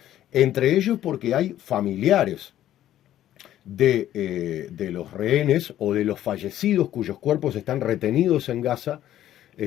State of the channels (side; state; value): right; quieter; 12.5 dB